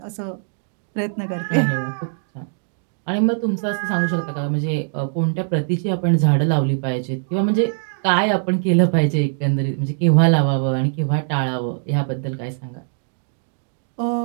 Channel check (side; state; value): left; silent; digital silence